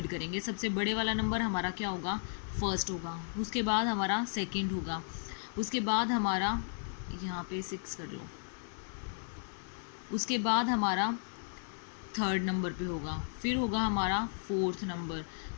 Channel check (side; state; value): right; silent; digital silence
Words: करेंगे। सबसे बड़े वाला नंबर हमारा क्या होगा, फर्स्ट होगा, उसके बाद हमारा सेकंड होगा, उसके बाद हमारा यहाँ पे 6 कर लो, उसके बाद हमारा थर्ड नंबर पे होगा, फिर होगा हमारा फोर्थ नंबर,